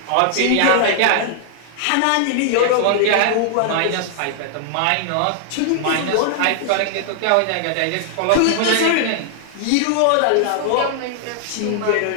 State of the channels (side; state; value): both; different; correlation -0.01